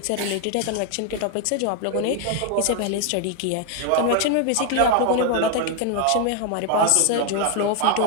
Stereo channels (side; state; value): both; different; correlation 0.01